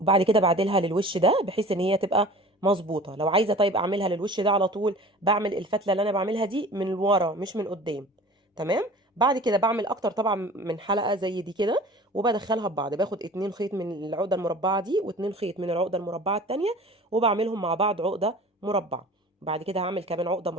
كده بعدلها للوش ده بحيث ان هي تبقى مظبوطه. لو عايزه طيب اعملها للوش ده على طول، بعمل الفتله اللي انا بعملها دي من ورا مش من قدام. تمام. بعد كده بعمل اكتر طبعا من حلقه زي دي كده، وبدخلها ببعض. باخد 2 خيط من العقده المربعه دي و2 خيط من العقده المربعه التانية، وبعملهم مع بعض عقده مربعه. بعد كده هعمل كمان عقده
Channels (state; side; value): normal; both; correlation 0.42